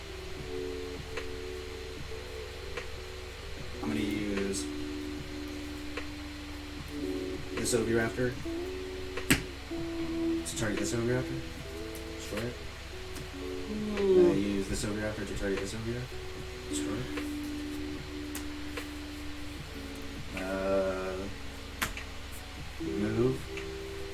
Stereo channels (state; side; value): identical; both; correlation 1.00